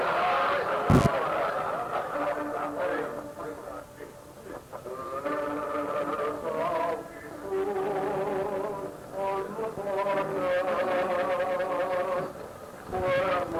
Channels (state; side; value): identical; both; correlation 1.00